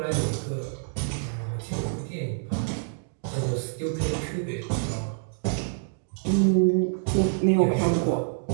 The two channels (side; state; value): left; silent; digital silence